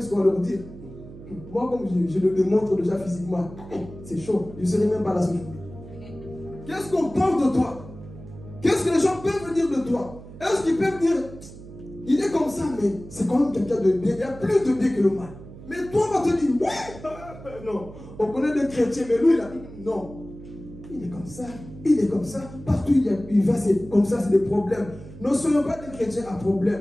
qu'on va leur dire. Moi, comme je le démontre déjà physiquement, c'est chaud. Je ne serai même pas là ce jour. Qu'est-ce qu'on pense de toi? Qu'est-ce que les gens peuvent dire de toi? Est-ce qu'ils peuvent dire, il est comme ça, mais c'est quand même quelqu'un de bien. Il y a plus de bien que le mal. Mais toi, on va te dire, ouais, non. On connaît des chrétiens, mais lui, il a dit, non. Il est comme ça, il est comme ça. Partout il va, c'est comme ça, c'est des problèmes. Ne soyons pas des chrétiens à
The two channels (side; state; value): right; noise; hum, 16 dB below the sound